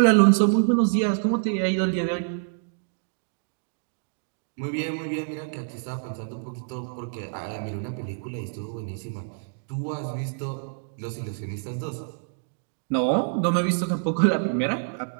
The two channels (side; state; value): left; silent; digital silence